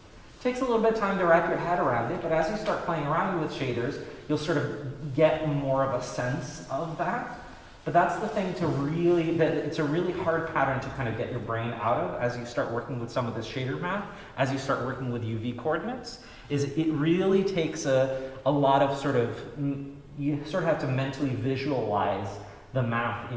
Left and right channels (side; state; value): both; identical; correlation 1.00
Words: It takes a little bit of time to wrap your head around it, but as you start playing around with shaders, you'll sort of get more of a sense of that. But that's the thing to really, that it's a really hard pattern to kind of get your brain out of as you start working with some of this shader math, as you start working with UV coordinates, is it really takes a lot of sort of, you sort of have to mentally visualize the math